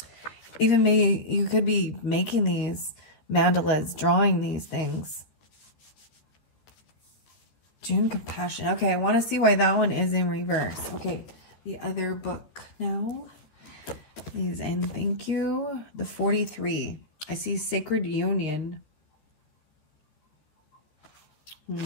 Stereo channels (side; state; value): right; late; 13 ms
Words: Even maybe you could be making these mandalas, drawing these things. June compassion. Okay, I want to see why that one is in reverse. Okay, the other book now. Please and thank you. The 43. I see sacred union.